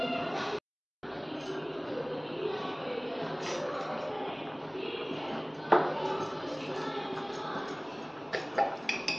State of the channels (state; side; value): identical; both; correlation 1.00